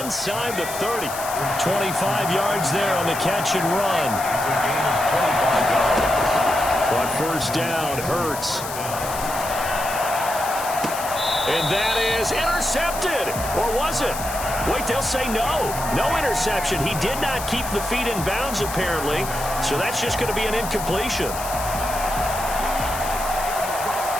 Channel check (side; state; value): left; noise; hiss, 9 dB below the sound